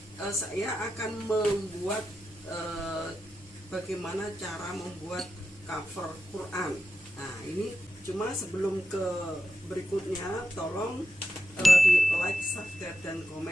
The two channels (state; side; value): normal; both; correlation 0.89